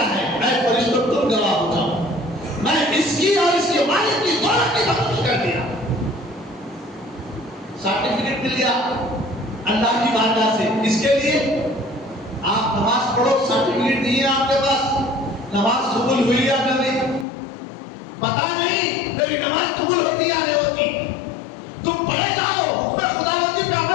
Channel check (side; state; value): right; drops out; at 17.2 s